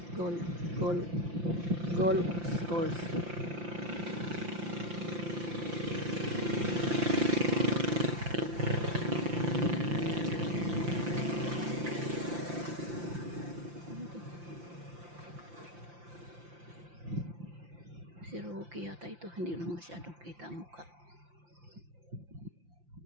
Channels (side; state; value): left; late; 5.8 ms